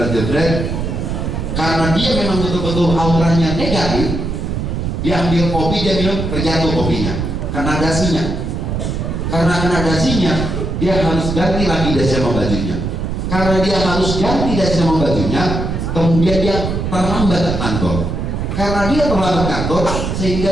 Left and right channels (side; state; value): right; noise; rumble, 3 dB below the sound